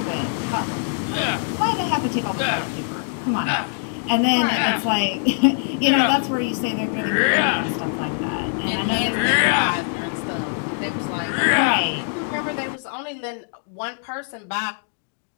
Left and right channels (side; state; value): right; silent; digital silence